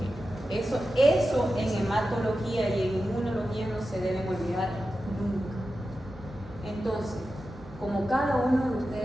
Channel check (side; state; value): both; normal; correlation 0.92